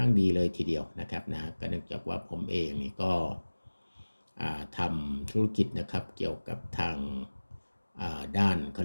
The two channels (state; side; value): inverted; both; correlation -1.00